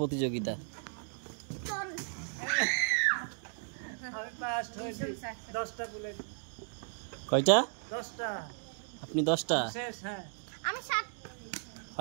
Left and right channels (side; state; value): left; silent; digital silence